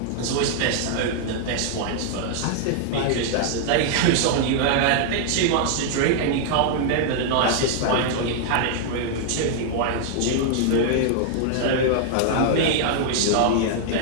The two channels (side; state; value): both; different; correlation -0.01